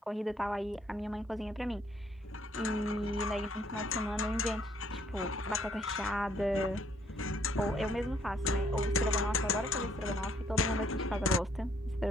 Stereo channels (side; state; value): both; normal; correlation 0.66